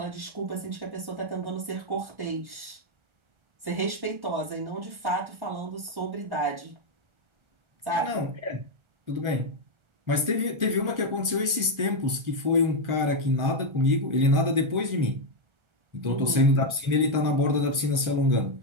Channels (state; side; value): late; left; 1.4 ms